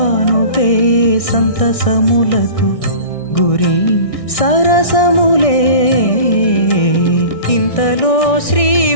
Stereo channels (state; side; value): late; right; 1.6 ms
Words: సంతసములకు గురి సరసములే. ఇంతలో శ్రీ